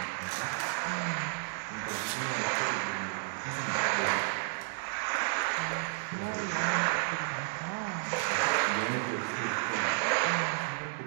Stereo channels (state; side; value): silent; left; 56 dB below the other